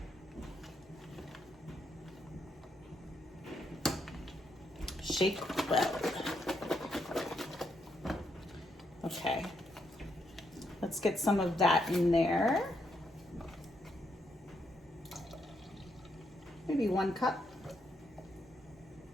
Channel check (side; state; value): both; normal; correlation 0.79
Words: Shake well. Okay, let's get some of that in there. Maybe 1 cup.